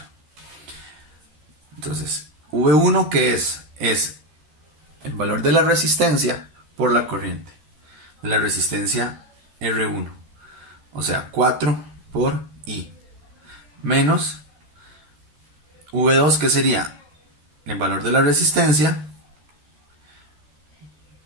Entonces, V1, ¿qué es? Es el valor de la resistencia por la corriente. De la resistencia R1. O sea, 4 por I. Menos V2, que sería el valor de la resistencia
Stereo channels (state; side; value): late; left; 13 ms